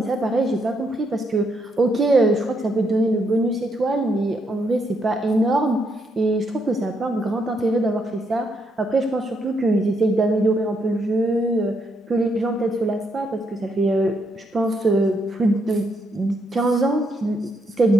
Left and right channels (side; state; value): both; normal; correlation 0.76